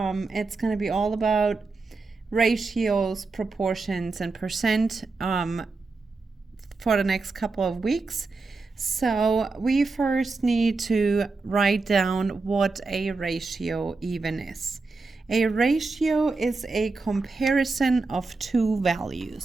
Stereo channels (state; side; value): quieter; left; 3.9 dB